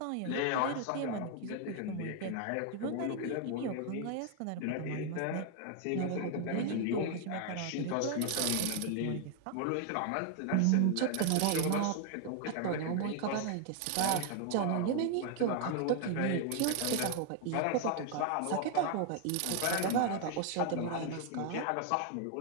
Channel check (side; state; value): both; different; correlation 0.00